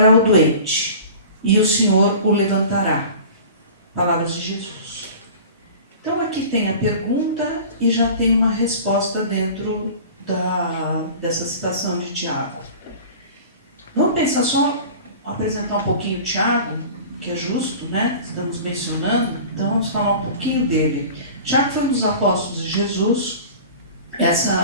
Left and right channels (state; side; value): inverted; both; correlation -0.39